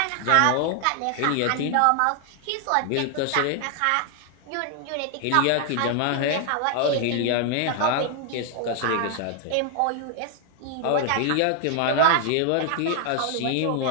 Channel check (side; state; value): both; different; correlation 0.00